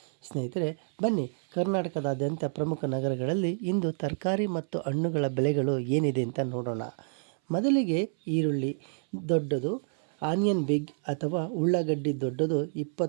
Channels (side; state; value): left; silent; 59 dB below the other